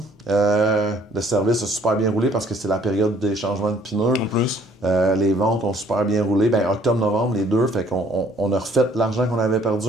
Le service a super bien roulé parce que c'est la période des changements de pneus. En plus. Les ventes ont super bien roulé. Ben, octobre-novembre, les deux. Fait qu'on a refait l'argent qu'on avait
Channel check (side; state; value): both; normal; correlation 0.60